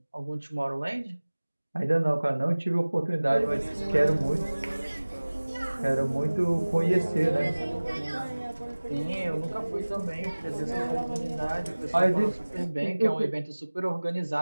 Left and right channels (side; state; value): both; inverted; correlation -1.00